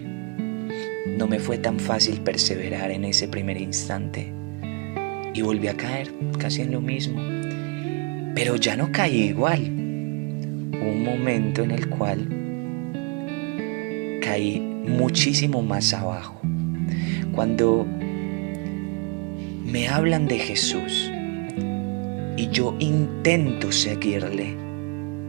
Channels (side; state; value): left; quieter; 30.8 dB